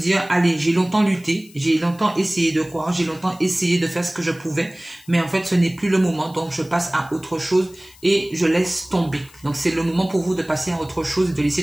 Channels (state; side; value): noise; left; hiss, 24 dB below the sound